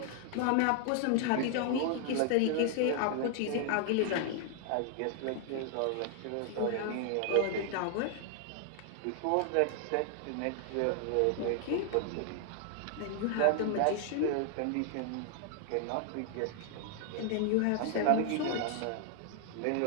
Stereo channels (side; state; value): both; different; correlation 0.00